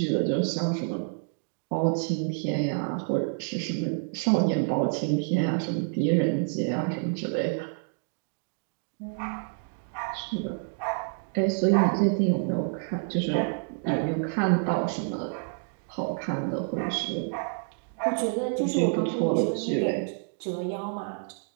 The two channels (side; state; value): left; silent; 59 dB below the other